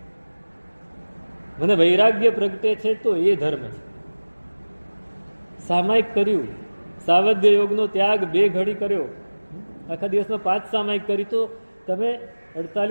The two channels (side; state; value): both; inverted; correlation -1.00